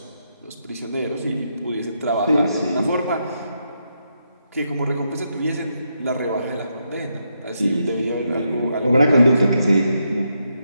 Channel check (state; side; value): inverted; both; correlation -0.81